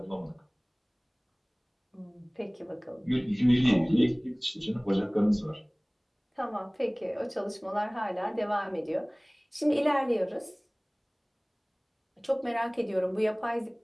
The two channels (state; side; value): identical; both; correlation 1.00